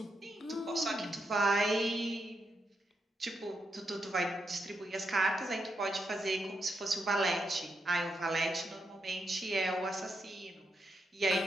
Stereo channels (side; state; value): both; normal; correlation 0.83